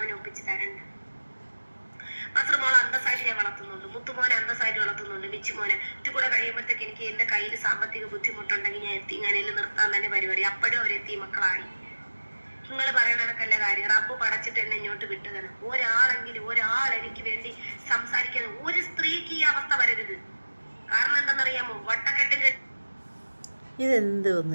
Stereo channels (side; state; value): both; inverted; correlation -1.00